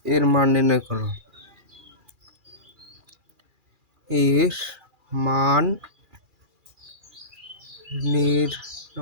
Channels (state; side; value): late; left; 2.4 ms